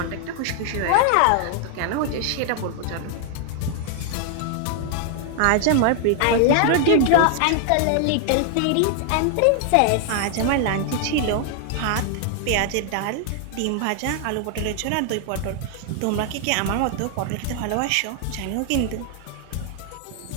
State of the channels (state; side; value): different; both; correlation 0.00